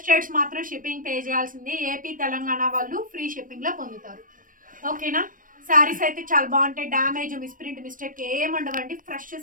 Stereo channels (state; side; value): late; left; 0.40 ms